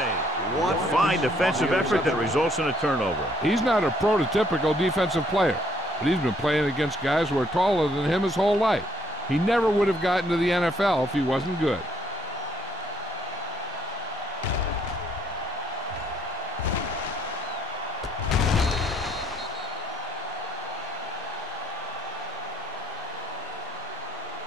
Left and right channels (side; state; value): both; normal; correlation 0.67